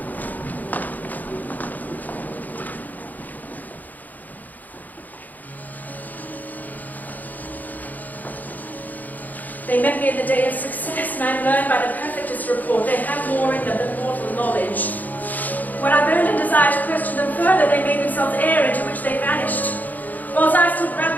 They met me in the day of success, and I learned by the perfectest report they have more in them than mortal knowledge. When I burned a desire to question them further, whether they made themselves air into which they vanished. Whilst I stood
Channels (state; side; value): late; right; 0.082 ms